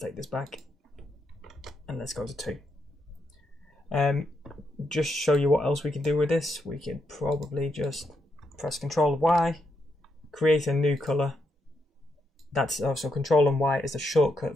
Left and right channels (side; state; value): both; normal; correlation 0.81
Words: this back and let's go to 2. Just show you what else we can do with this. We could probably just press Control Y, create a new color. That's also Control and Y is a